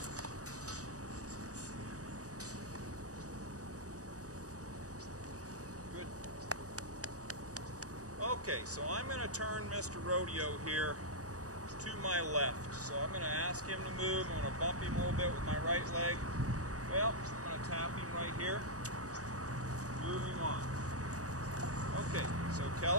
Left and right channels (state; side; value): late; left; 0.66 ms